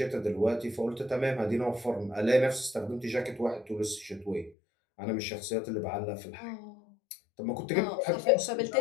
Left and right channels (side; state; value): right; drops out; at 4.5 s